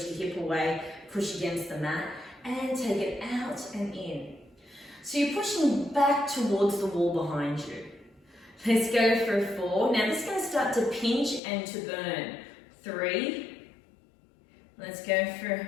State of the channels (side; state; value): right; drops out; at 11.4 s